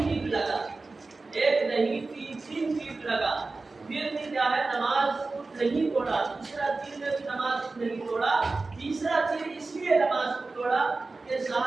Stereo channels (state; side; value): quieter; left; 3.6 dB